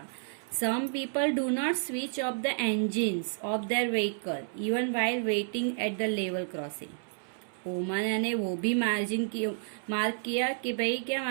Some people do not switch off the engines of their vehicle even while waiting at the level crossing. ओमाना ने वो भी मार्क किया कि भाई, क्या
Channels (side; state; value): left; silent; 57 dB below the other